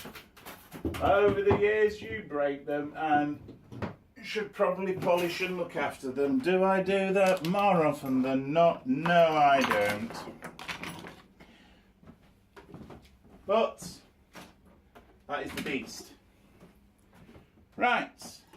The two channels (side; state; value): both; identical; correlation 1.00